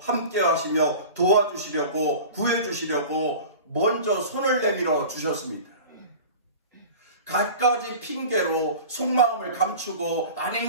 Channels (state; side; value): inverted; both; correlation -0.37